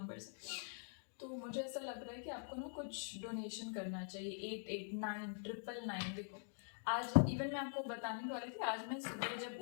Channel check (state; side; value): silent; right; digital silence